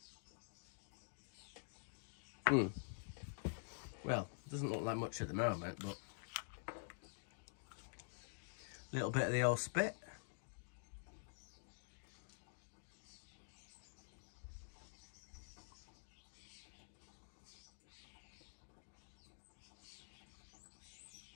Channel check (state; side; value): silent; right; digital silence